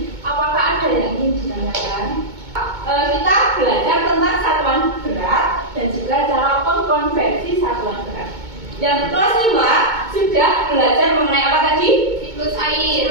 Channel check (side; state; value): left; late; 2.2 ms